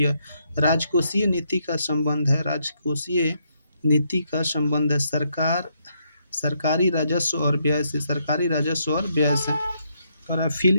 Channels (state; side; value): inverted; both; correlation -0.76